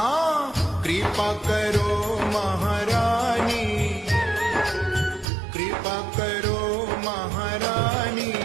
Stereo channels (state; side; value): drops out; left; at 5.2 s